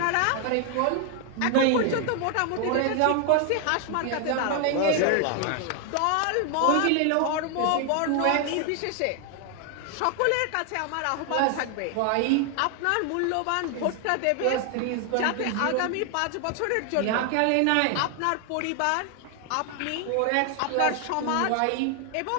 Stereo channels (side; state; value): both; different; correlation 0.00